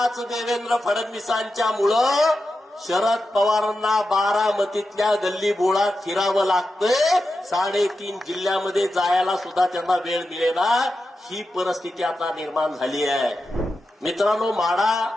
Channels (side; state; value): both; normal; correlation 0.90